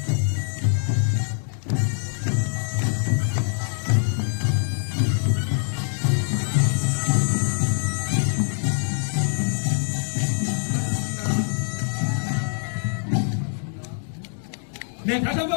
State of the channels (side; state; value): right; silent; digital silence